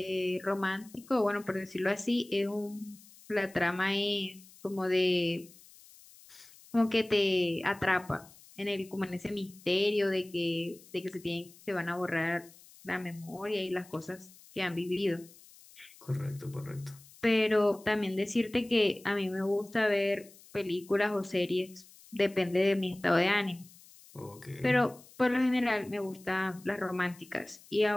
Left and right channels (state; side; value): noise; left; hiss, 23 dB below the sound